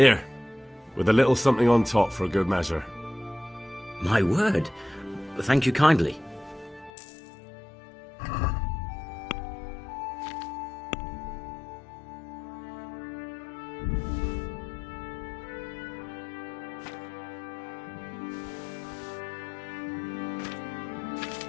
with a little something on top for a good measure. My word. Thank you kindly.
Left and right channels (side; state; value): right; drops out; at 6.9 s